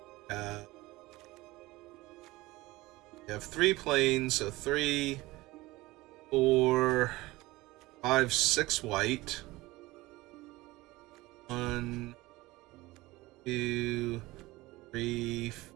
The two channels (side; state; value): left; quieter; 19.9 dB